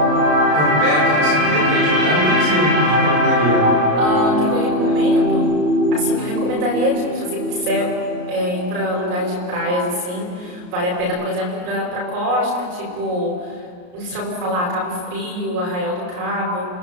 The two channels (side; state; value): left; late; 34 ms